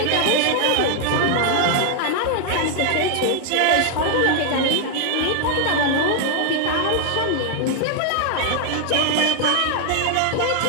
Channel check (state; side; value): different; both; correlation 0.00